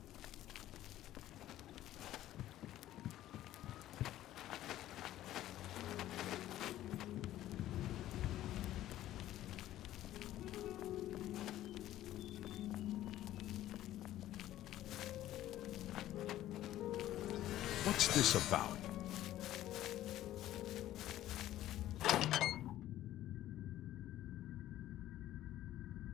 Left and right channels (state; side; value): quieter; right; 13.7 dB